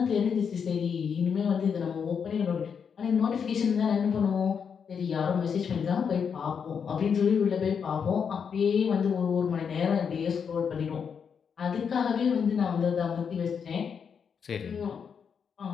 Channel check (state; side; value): quieter; right; 6.8 dB